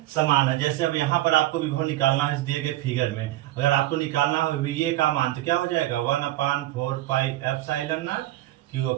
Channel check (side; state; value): left; quieter; 15.9 dB